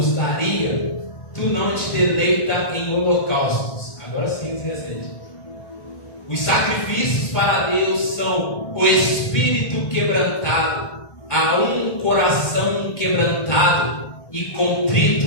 daria. Tu não te deleita em holocaustos. Agora sim, 17. Os sacrifícios para Deus são o espírito quebrantado, a um coração quebrantado e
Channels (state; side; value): late; right; 1.1 ms